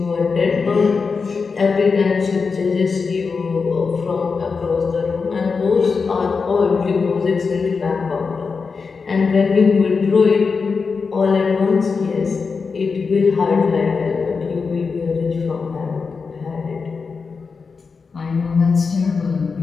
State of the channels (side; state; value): right; quieter; 5.0 dB